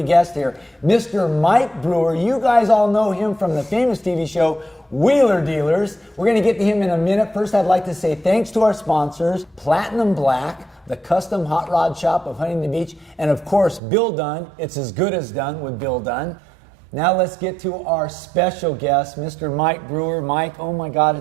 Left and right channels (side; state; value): left; drops out; at 13.8 s